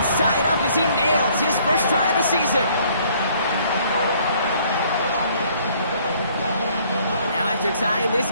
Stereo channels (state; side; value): inverted; both; correlation -0.61